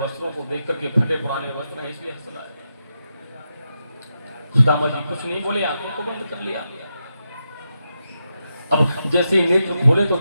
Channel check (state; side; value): inverted; both; correlation -0.86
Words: को देख करके फटे पुराने वस्त्र हैं, इसलिए हंस रहा है। सुदामा जी कुछ नहीं बोले, आंखों को बंद कर लिया। अब जैसे ही नेत्र खोले तो